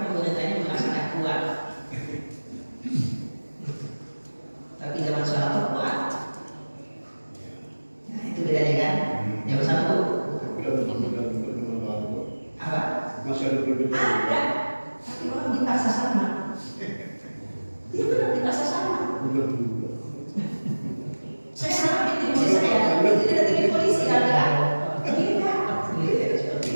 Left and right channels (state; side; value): inverted; both; correlation -1.00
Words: pemerintahnya merasa nggak kuat. Tapi zaman Soeharto kuat. Nah itu bedanya kan. Zaman Soeharto apa? Masih ada perbedaan. Ada. Tapi orang dipaksa sama. Dia benar dipaksa sama. Saya sama bikin polisi saya. Itu tidak bikin polisi kan?